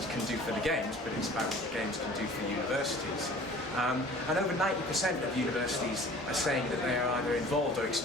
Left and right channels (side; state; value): both; normal; correlation 0.47